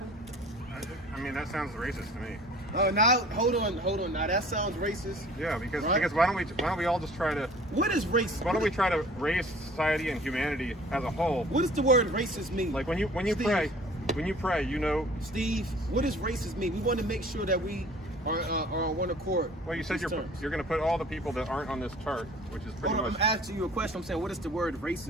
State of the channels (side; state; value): both; normal; correlation 0.48